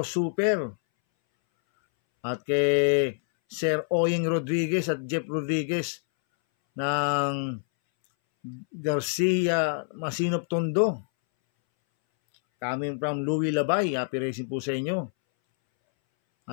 Super at kay Sir Oyeng Rodriguez at Jeff Rodriguez ng Garcia Masinop Tondo. Coming from Louis Labay. Happy racing po sa inyo.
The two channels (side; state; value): right; silent; 61 dB below the other